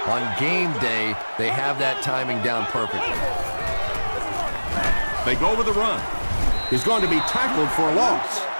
on game day, they have that timing down perfectly. They go with the run. He's going to be tackled for a loss.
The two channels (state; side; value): inverted; both; correlation -1.00